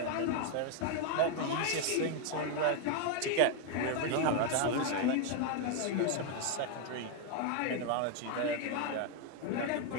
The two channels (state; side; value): different; both; correlation 0.01